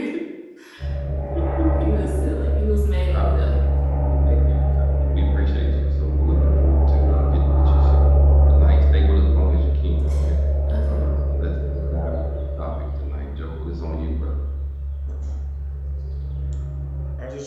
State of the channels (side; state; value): both; identical; correlation 1.00